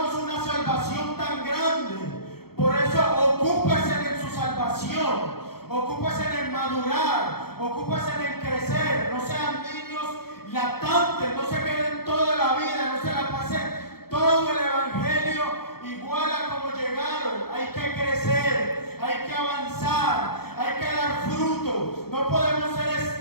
una salvación tan grande. Por eso ocúpese en su salvación, ocúpese en madurar, ocúpese en crecer. No sean niños lactantes, no se queden toda la vida, no se la pasen todo el evangelio igual a como llegaron. Hay que crecer, hay que avanzar, hay que dar fruto. No podemos ser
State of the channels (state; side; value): late; right; 0.95 ms